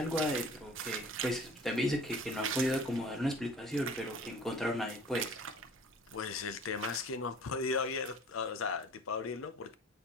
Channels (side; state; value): both; normal; correlation 0.46